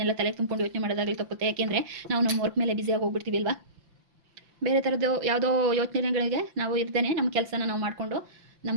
ತಲೆ ತುಂಬಿಕೊಂಡು ಯೋಚನೆ ಮಾಡೋದಾಗಲಿ ತಪ್ಪುತ್ತೆ. ಯಾಕೆಂದರೆ ನಾವು ನಮ್ಮ ವರ್ಕ್ ಮೇಲೆ ಬ್ಯುಸಿಯಾಗಿ ಹೋಗ್ಬಿಡ್ತೀವಿ ಅಲ್ವಾ. ಬೇರೆ ಥರದ್ದು ಯಾವುದೋ ಯೋಚನೆಗಳಿಗೆ ನಾವು ಇರ್ದೇನೆ ನಮ್ಮ ಕೆಲಸನ ನಾವು ಮಾಡಿಕೊಂಡು,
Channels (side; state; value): left; late; 5.8 ms